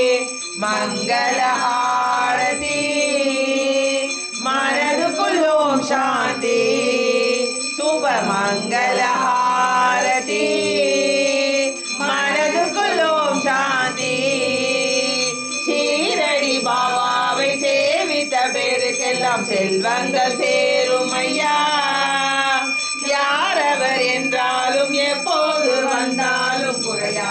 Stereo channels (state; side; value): identical; both; correlation 1.00